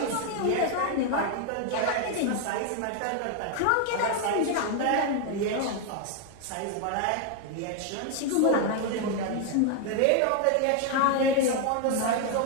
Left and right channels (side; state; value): both; different; correlation 0.01